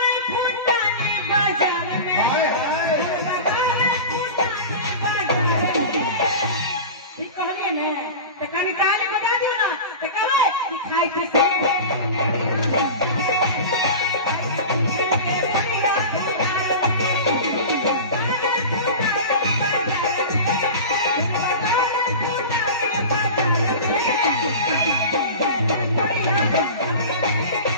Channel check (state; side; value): inverted; both; correlation -0.31